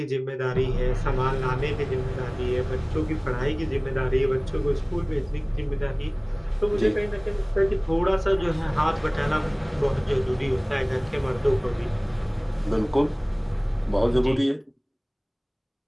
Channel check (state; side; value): identical; both; correlation 1.00